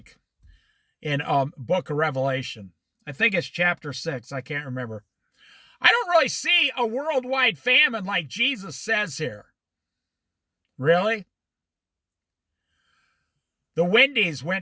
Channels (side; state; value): both; identical; correlation 1.00